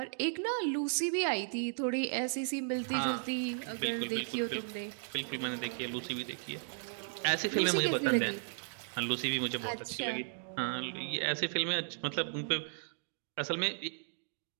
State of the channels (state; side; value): silent; left; digital silence